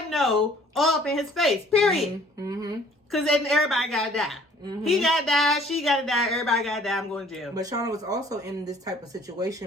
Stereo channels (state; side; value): normal; both; correlation 0.56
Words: know all up in his face. Period. Because then everybody gotta die. He gotta die. She gotta die. Everybody gotta die. I'm going to jail. But Shana was also in this type of